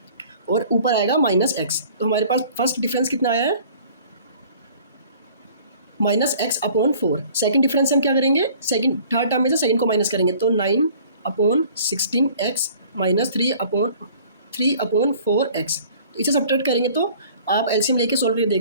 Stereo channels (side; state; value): both; inverted; correlation -0.51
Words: और ऊपर आएगा -x। तो हमारे पास फर्स्ट डिफरेंस कितना आया है -x/4। सेकंड डिफरेंस हम क्या करेंगे, सेकंड थर्ड टर्म में से सेकंड को माइनस करेंगे, तो 9/16x - 3/4x। तो इसे सब्ट्रैक्ट करेंगे तो आप एलसीएम लेके सॉल्व करके